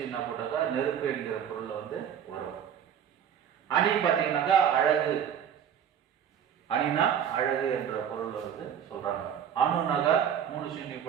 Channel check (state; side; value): quieter; left; 8.8 dB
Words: போட்டாக்கா நெருப்பு என்கிற பொருள்ல வந்து வரும். அணி பாத்தீங்கன்னாக்கா அழகு. அணினா அழகு என்ற பொருள் வந்து சொல்றாங்க. அணுனாக 3 சீனி